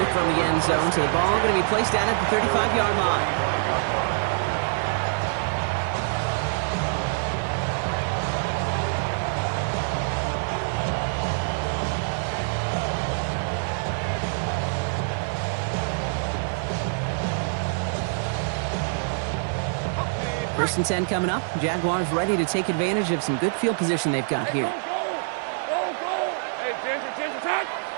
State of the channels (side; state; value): left; silent; 61 dB below the other